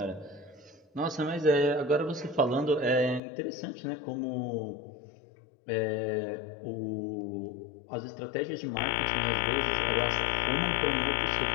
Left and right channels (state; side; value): drops out; right; at 3.2 s